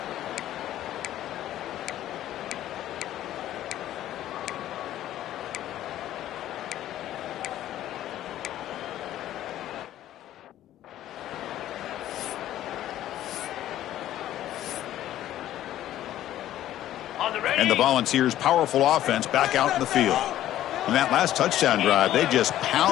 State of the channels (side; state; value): right; quieter; 13.0 dB